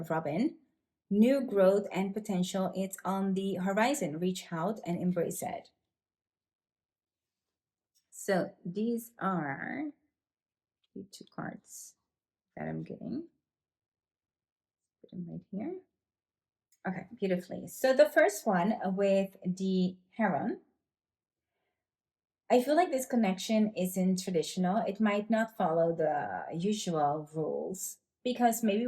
Robin, new growth and potential. It's on the horizon. Reach out and embrace it. So these are the two cards that I'm getting. Put them right here. Okay, beautifully. So the first one with the Heron, I feel like this connection isn't traditional. It might not follow the usual rules because maybe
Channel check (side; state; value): both; identical; correlation 1.00